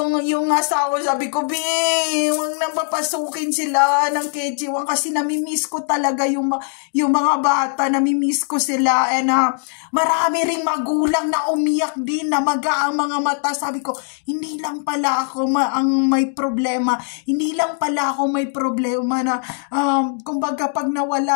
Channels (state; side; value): silent; right; 59 dB below the other